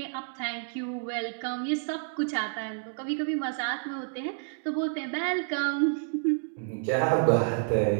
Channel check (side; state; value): left; silent; digital silence